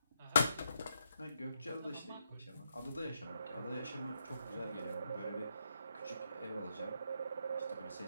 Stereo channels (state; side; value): inverted; both; correlation -0.80